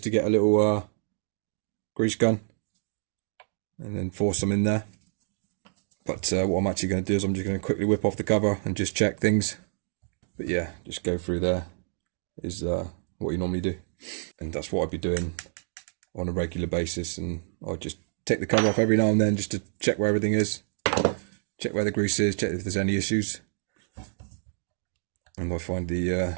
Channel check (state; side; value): silent; left; digital silence